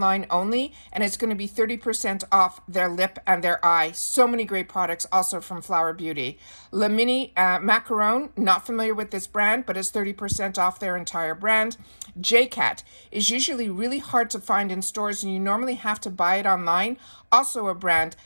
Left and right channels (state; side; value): inverted; both; correlation -1.00